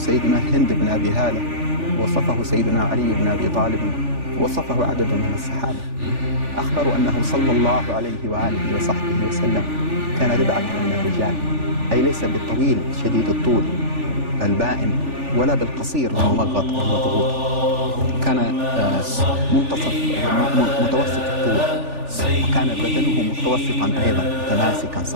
هند بن أبي هالة، وصفه سيدنا علي بن أبي طالب، وصفه عدد من الصحابة. أخبروا أنه صلى الله عليه وآله وصحبه وسلم كان ربعة من الرجال، أي ليس بالطويل شديد الطول البائن ولا بالقصير الممغط المضغوط، كان متوسط الطول، وكان بدنه متوسطا أيضا متماسكا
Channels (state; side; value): late; left; 3.4 ms